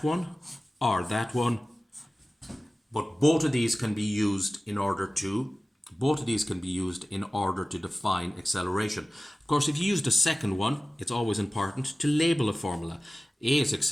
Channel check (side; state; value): both; normal; correlation 0.97